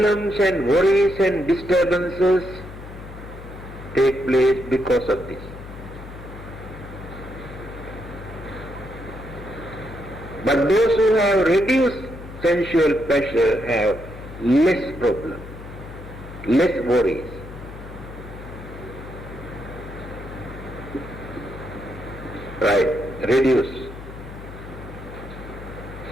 and worries and disturbances take place because of this. But those who have reduced sensual pleasure have less problem, less worries. Right, reduce.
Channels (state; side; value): noise; left; hum, 13 dB below the sound